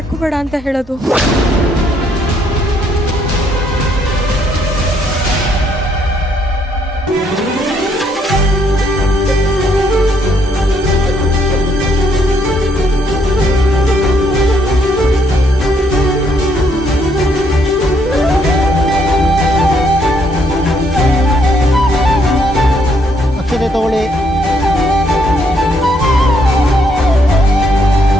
ಅಂತ ಹೇಳೋದು? ಅಕ್ಷತೆ ತಗೊಳ್ಳಿ.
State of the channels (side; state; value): both; normal; correlation 0.71